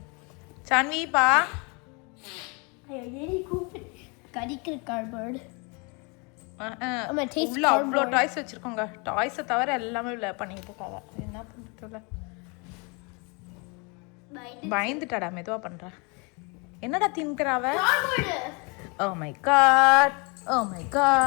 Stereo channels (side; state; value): right; quieter; 31.5 dB